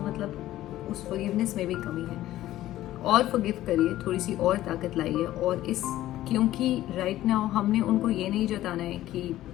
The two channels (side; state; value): right; quieter; 14.4 dB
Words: उस फॉरगिवनेस में भी कमी है। और फॉरगिव करिए, थोड़ी सी और ताकत लाइए। और इस क्योंकि राइट नाउ हमने उनको ये नहीं जताना है कि